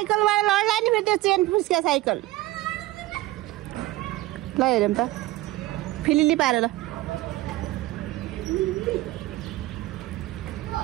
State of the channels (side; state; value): left; quieter; 17.5 dB